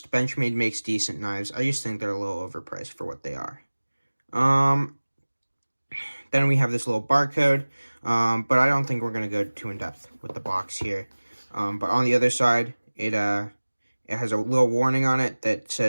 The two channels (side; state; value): both; inverted; correlation -1.00